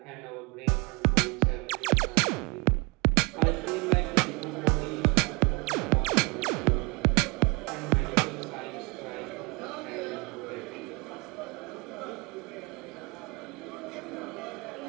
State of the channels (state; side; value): quieter; left; 28.4 dB